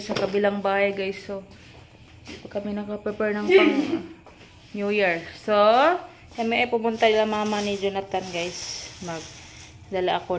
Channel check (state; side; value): identical; both; correlation 1.00